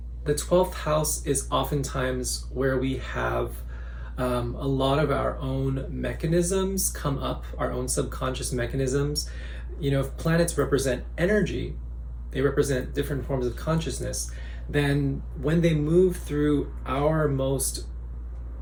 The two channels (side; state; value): both; identical; correlation 1.00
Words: the 12th house is oftentimes where we have a lot of our own mechanisms come up, our own subconscious mechanisms. If planets represent energy, they represent different forms of consciousness, then when they move through our most